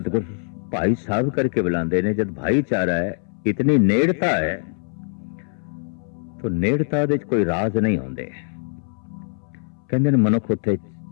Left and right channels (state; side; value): silent; right; 62 dB below the other